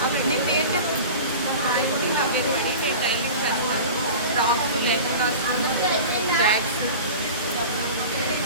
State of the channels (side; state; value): both; inverted; correlation -0.35